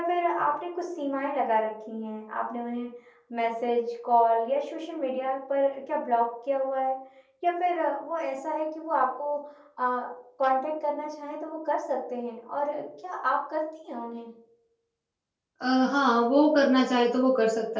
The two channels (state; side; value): identical; both; correlation 1.00